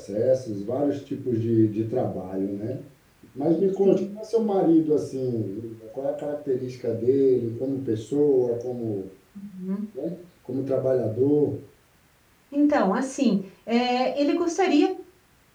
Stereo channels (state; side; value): identical; both; correlation 1.00